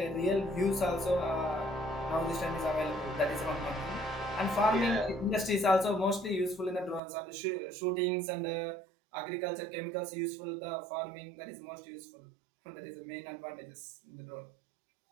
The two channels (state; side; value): drops out; left; at 7.0 s